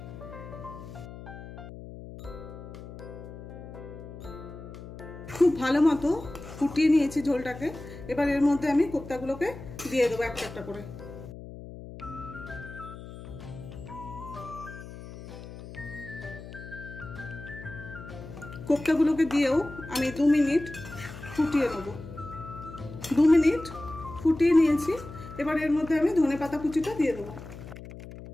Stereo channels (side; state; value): left; noise; hum, 13 dB below the sound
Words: খুব ভালো মতো ফুটিয়ে নিয়েছি ঝোলটাকে। এবার এর মধ্যে আমি কোপ্তাগুলোকে দিয়ে দেবো একটা একটা করে। কোপ্তাগুলোকে দিয়েও আমি 2 মিনিট ফুটিয়ে নেব। 2 মিনিট ফুটিয়ে নিয়েছি। এবার এর মধ্যে আমি ধনেপাতা কুচিটা দিয়ে দেবো।